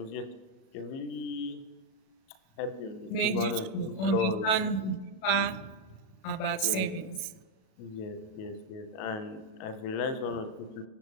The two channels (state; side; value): late; right; 37 ms